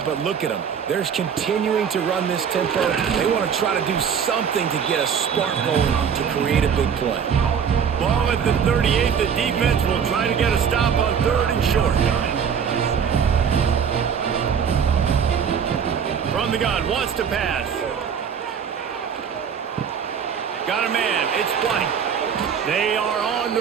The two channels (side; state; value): left; quieter; 7.3 dB